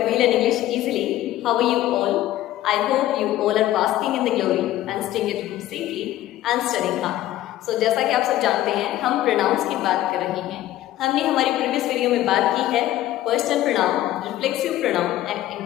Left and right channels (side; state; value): right; quieter; 14.3 dB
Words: We Learn English Easily. How are you all? I hope you all are basking in the glory and staying at home safely and studying hard. So जैसा कि आप सब जानते हैं, हम pronounce की बात कर रहे हैं। हमने हमारी प्रीवियस वीडियो में बात की है personal pronoun, reflexive pronoun and